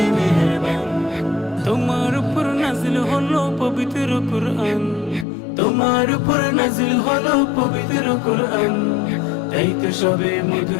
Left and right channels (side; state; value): right; drops out; at 5.2 s